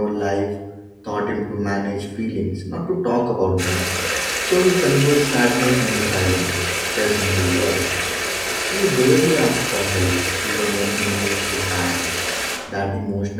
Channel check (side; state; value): both; identical; correlation 1.00